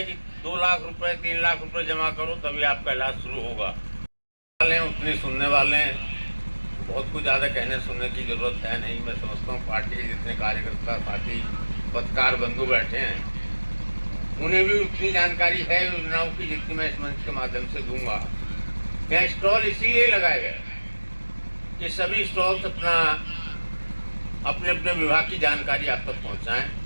कि 2 लाख रुपए 3 लाख रुपए जमा करो तभी आपका इलाज शुरू होगा। उतने सुनने वाले हैं, बहुत कुछ ज़्यादा कहने सुनने की जरूरत है नहीं। मैं समझता हूँ पार्टी के जितने कार्यकर्ता साथी पत्रकार बंधु बैठे हैं उन्हें भी उतनी जानकारी है योजनाओं की जितनी मैं इस मंच के माध्यम से दूंगा। यहाँ स्टॉल इसीलिए लगाए गए कि सभी स्टॉल्स अपने अपने विभाग की जानकारी आप तक पहुँचाएँ।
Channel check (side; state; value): both; inverted; correlation -1.00